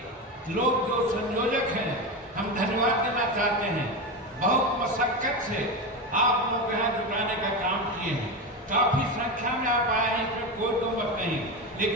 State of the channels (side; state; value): both; normal; correlation 0.18